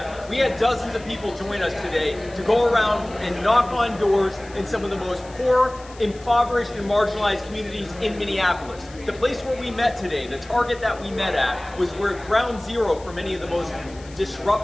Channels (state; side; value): noise; left; hiss, 22 dB below the sound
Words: We had dozens of people join us today to go around and knock on doors in some of the most poor, impoverished, and marginalized communities in Minneapolis. The place where we met today, the target that we met at, was where ground zero for many of the most